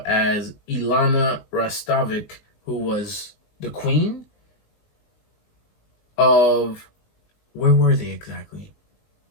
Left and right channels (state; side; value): late; right; 19 ms